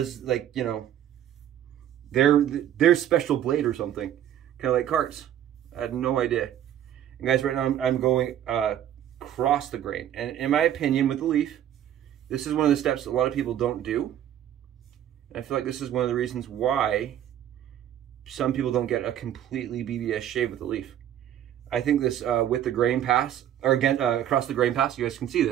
like, you know, their special blade or something, kind of like carts. I had no idea. And guys, right now I'm going across the grain, and in my opinion, with the Leaf, this is one of the steps that a lot of people don't do. And I feel like this is one of the reasons why some people don't get a completely BBS shave with the Leaf. I think this with the grain pass, or again across the grain pass, you guys can see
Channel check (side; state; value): left; quieter; 11.0 dB